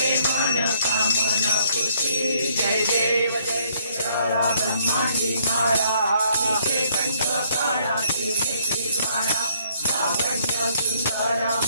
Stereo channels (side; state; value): both; inverted; correlation -0.66